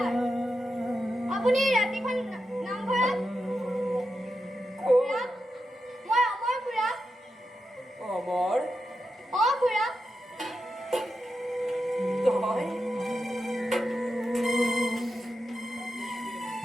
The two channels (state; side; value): normal; both; correlation 0.88